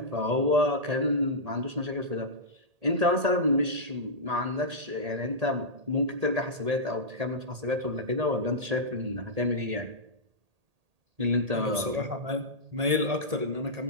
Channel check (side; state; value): left; late; 1.8 ms